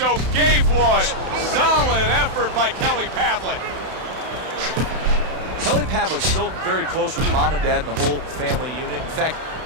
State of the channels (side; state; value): left; late; 31 ms